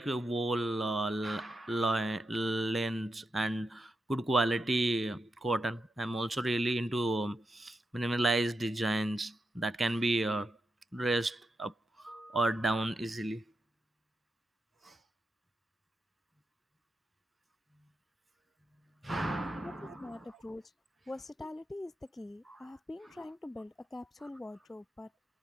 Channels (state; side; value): normal; both; correlation 0.87